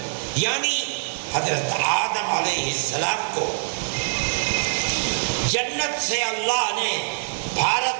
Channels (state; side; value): silent; left; 59 dB below the other